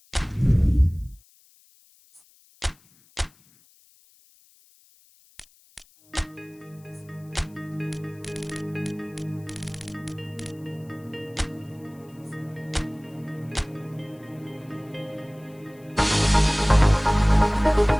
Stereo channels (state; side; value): noise; left; hiss, 30 dB below the sound